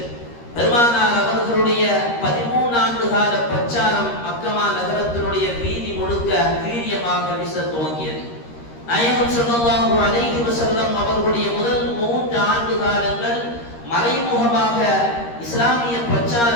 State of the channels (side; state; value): right; late; 13 ms